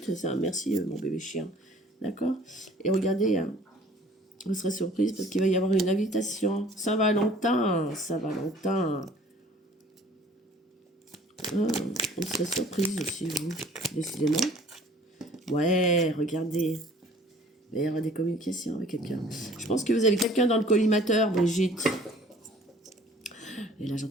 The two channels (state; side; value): normal; both; correlation 0.52